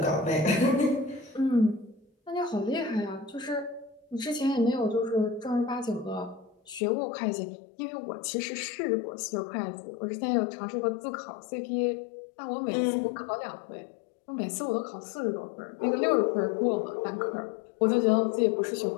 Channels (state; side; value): drops out; right; at 6.8 s